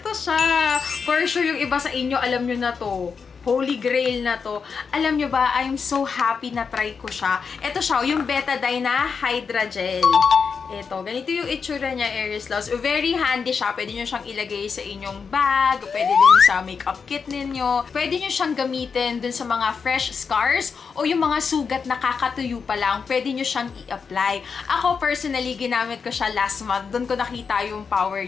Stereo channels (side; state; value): right; quieter; 5.7 dB